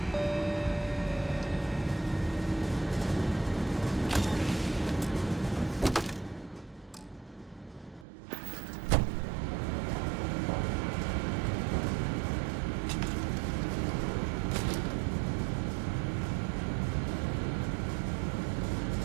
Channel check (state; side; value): drops out; left; at 8.1 s